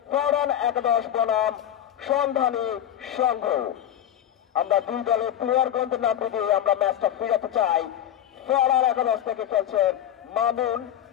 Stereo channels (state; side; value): quieter; right; 10.7 dB